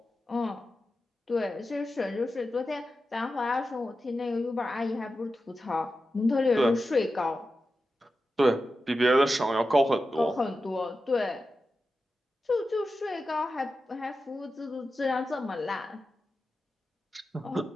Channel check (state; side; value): normal; both; correlation 0.91